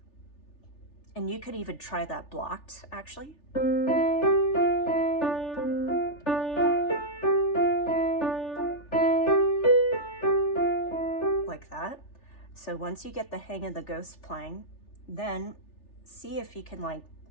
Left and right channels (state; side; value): late; right; 3.4 ms